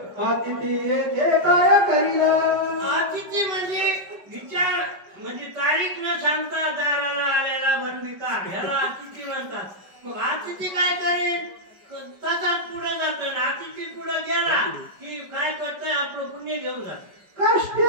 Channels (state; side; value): late; left; 5.2 ms